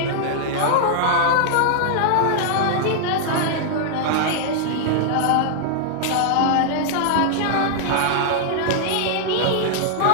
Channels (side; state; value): both; different; correlation -0.01